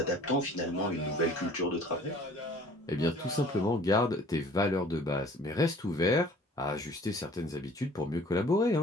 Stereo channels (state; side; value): normal; both; correlation 0.51